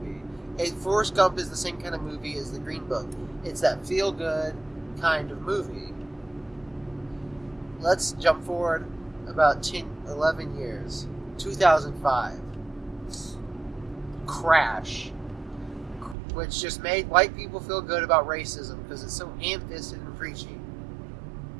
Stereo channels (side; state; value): left; drops out; at 16.2 s